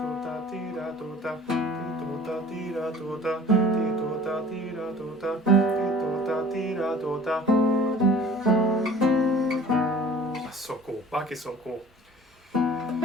That's so cool. Bach is so cool.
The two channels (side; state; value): both; normal; correlation 0.48